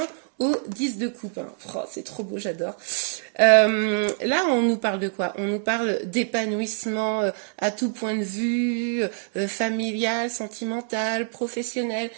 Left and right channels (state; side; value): silent; left; 62 dB below the other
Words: au 10 de Coupe. Hein. Oh, c'est trop beau, j'adore. Là, on nous parle de quoi? On nous parle d'épanouissement à tout point de vue, familial, sentimental, professionnel.